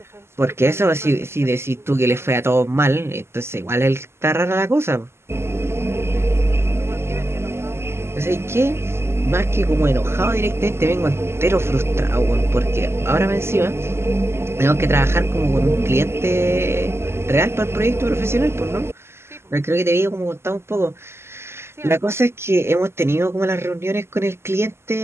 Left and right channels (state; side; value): late; left; 0.12 ms